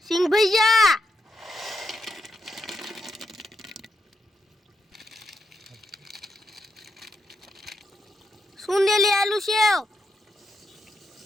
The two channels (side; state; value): both; normal; correlation 0.83